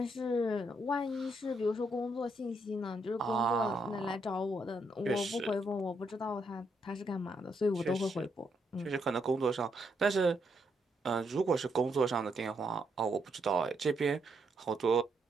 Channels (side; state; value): both; normal; correlation 0.77